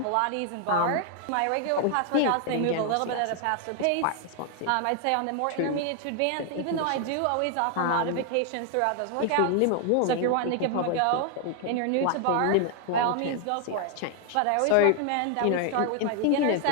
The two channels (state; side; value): different; both; correlation 0.00